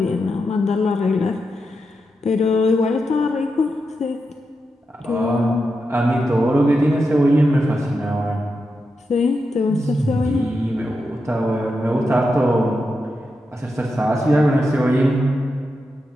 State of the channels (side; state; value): both; normal; correlation 0.87